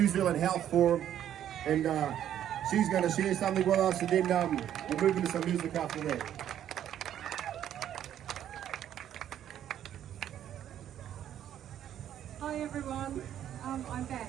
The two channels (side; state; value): left; quieter; 10.7 dB